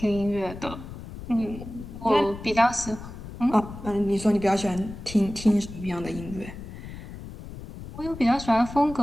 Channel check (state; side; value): noise; left; rumble, 12 dB below the sound